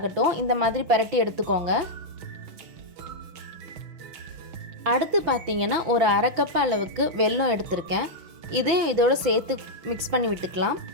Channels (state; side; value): late; left; 6.0 ms